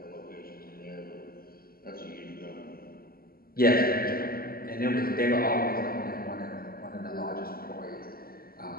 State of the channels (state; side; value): late; right; 0.43 ms